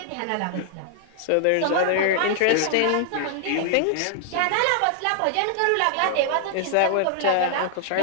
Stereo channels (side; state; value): both; different; correlation 0.00